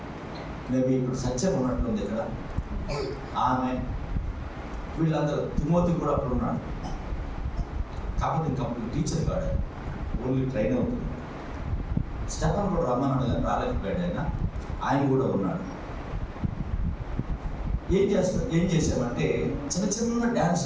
మేబీ ఇప్పుడు సత్యం ఉన్నట్లుంది ఇక్కడ. ఆమె వీళ్ళందరూ, తిమోతి కూడా అప్పుడు ఉన్నాడు. కాకపోతే ఇంకప్పుడు టీచర్ కాడు, ఓన్లీ ట్రైన్ అవుతుంది. స్టెఫన్ కూడా రమ్మన్నాడు కానీ రాలేకపోయాడు. ఆయన కూడా ఉన్నాడు. ఏం చేసామంటే చిన్న చిన్న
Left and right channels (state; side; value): identical; both; correlation 1.00